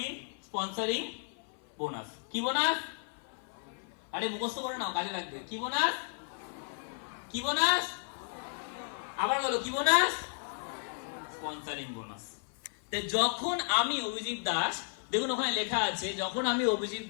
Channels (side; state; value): right; silent; 55 dB below the other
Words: Sponsoring bonus. কি বোনাস? আরে মুখস্থ করে নাও, কাজে লাগবে। কি বোনাস? কি বোনাস? আবার বলো, কি বোনাস? Sponsoring bonus. যখন আমি অভিজিৎ দাস, দেখুন ওখানে লেখা আছে, যখন আমি অভিজিৎ